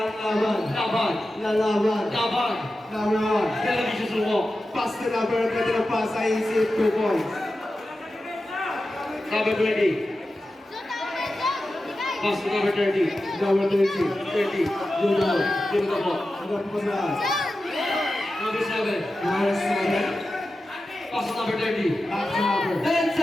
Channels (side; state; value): both; normal; correlation 0.93